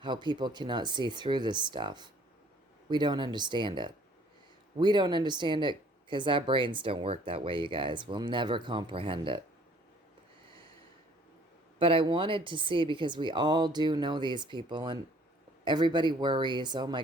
how people cannot see through this stuff. We don't understand it. We don't understand it because our brains don't work that way, you guys. We'll never comprehend it. But I wanted to see, because we all do know these people, and everybody worries, oh my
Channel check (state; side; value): normal; both; correlation 0.57